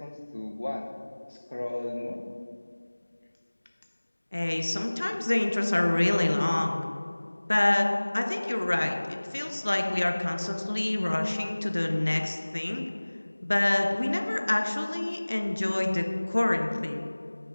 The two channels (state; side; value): inverted; both; correlation -1.00